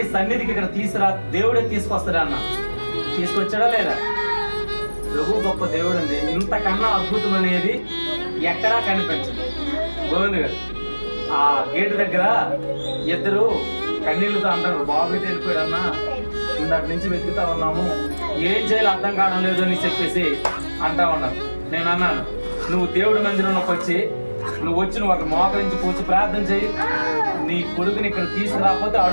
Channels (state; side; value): inverted; both; correlation -1.00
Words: సన్నిధికి ఇక్కడ తీసుకురా, దేవుడే తీసుకొస్తాడా అన్న. తీసుకొచ్చాడా లేదా? ప్రభు గొప్ప దేవుడు అండి. ఇంతకన్నా అద్భుతం అనేది ఎక్కడా కనిపించదు. గోవింద్ గారు ఆ గేటు దగ్గర ఇద్దరు కన్నీళ్ళతో అంటారు, బాబు వెళ్ళిపోయాడన్నా, ఇందాక నుంచి వెతుకుతా ఉన్నాము, ఏం చేయాలో అర్థం కావడం లేదు అని చెప్పేసి అంటా ఉన్నారు. నేను అన్నాను, నువ్వు దేవుడి మందిరంలోకి వచ్చి నువ్వు అక్కడ మోకరించి కూర్చి ప్రార్థన చేయి, నీ కొడుకుని ఇక్కడ తీసుకురాకపోతే